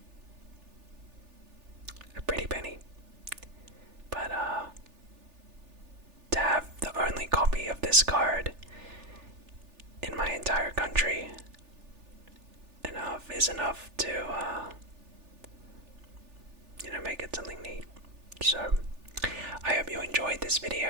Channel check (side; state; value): left; late; 3.4 ms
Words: a pretty penny. But, to have the only copy of this card in my entire country is enough to, make it something neat. So, I hope you enjoyed this